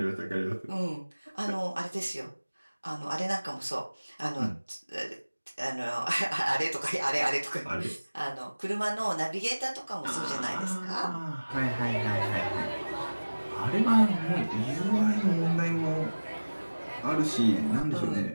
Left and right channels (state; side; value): inverted; both; correlation -1.00